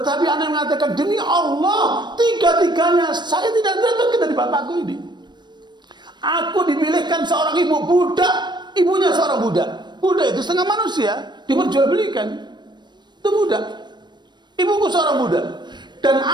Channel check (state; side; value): late; left; 0.22 ms